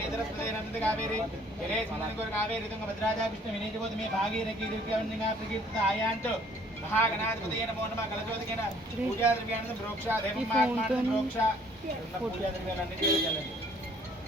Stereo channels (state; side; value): normal; both; correlation 0.59